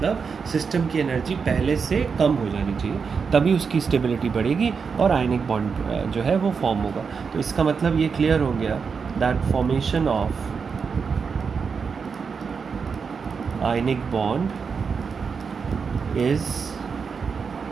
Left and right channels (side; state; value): left; quieter; 5.7 dB